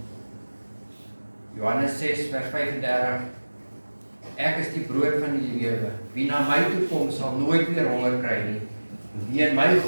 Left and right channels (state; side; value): inverted; both; correlation -1.00